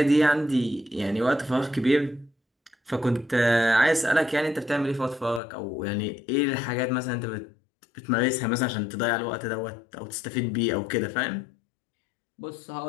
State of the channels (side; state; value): right; drops out; at 5.4 s